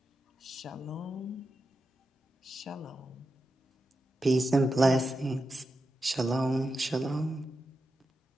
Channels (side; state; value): both; normal; correlation 0.89